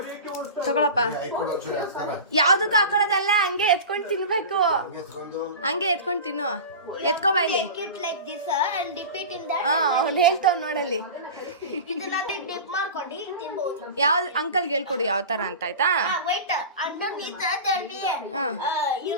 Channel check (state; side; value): inverted; both; correlation -0.31